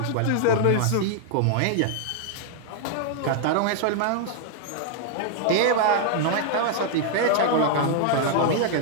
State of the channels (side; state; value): both; different; correlation 0.00